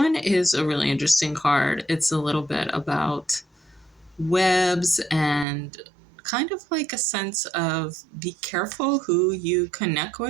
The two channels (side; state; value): left; drops out; at 5.5 s